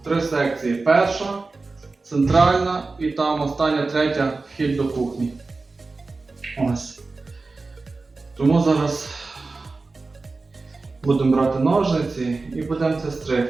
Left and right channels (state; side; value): quieter; left; 3.7 dB